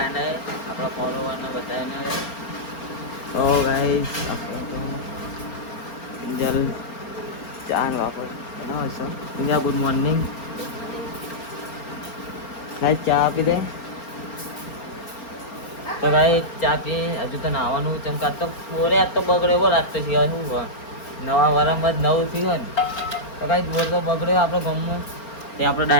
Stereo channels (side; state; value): right; late; 4.4 ms